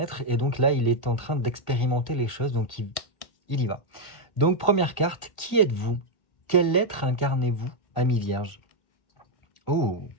et donc là, il est en train d'expérimenter les choses, donc il y va. Donc, première carte, qui êtes-vous? Quel être incarnez-vous, ami vierge? Oh!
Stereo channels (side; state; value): right; late; 1.4 ms